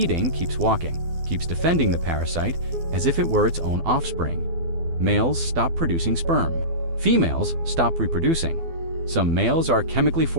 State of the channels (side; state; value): left; late; 12 ms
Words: keeps walking, keeps defending the parasite as if it were its own offspring. Males stop producing sperm. Females stop reproducing. Some males are chemically